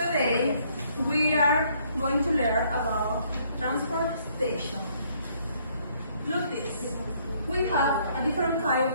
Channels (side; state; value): both; inverted; correlation -0.66